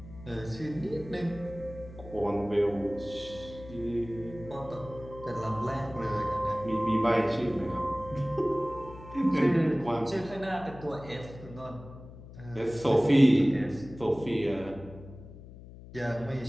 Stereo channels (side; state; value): left; noise; hum, 16 dB below the sound